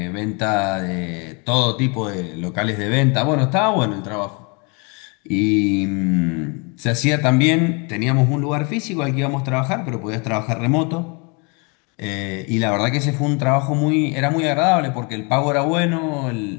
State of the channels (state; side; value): quieter; right; 32.1 dB